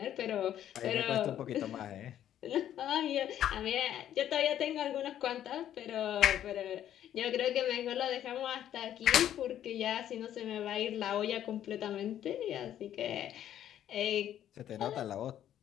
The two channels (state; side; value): quieter; right; 11.0 dB